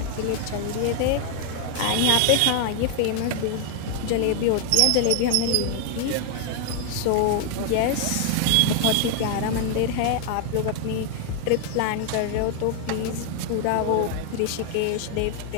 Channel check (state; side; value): different; both; correlation 0.00